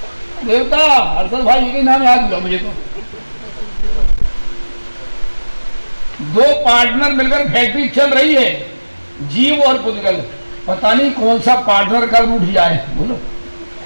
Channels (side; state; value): both; inverted; correlation -1.00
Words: देवता हर्षद भाई के नाम याद हुआ मुझे तो। 2 पार्टनर मिलकर फैक्ट्री चल रही है, जीव और पुद्गल। पता नहीं कौन सा पार्टनर कब उठ जाए, बोलो